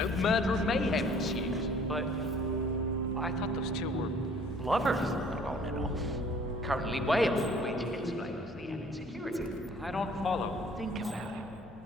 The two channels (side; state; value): both; normal; correlation 0.54